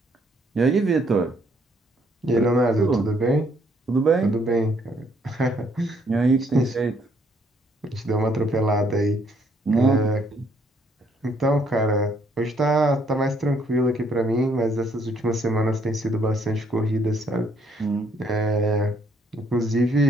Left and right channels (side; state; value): both; normal; correlation 0.68